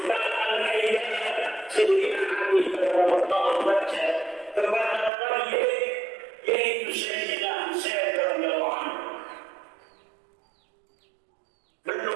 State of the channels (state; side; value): drops out; left; at 5.1 s